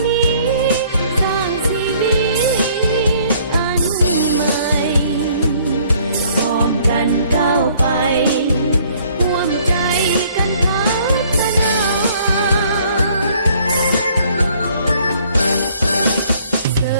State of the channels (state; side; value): inverted; both; correlation -0.61